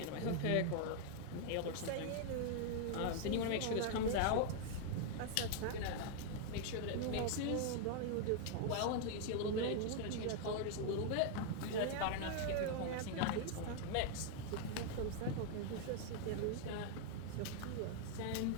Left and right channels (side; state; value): both; different; correlation 0.00